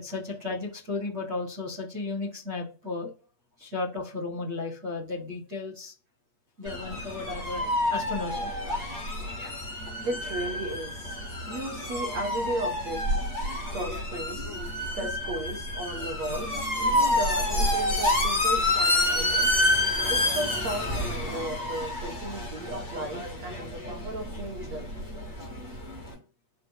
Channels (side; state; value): left; late; 8.5 ms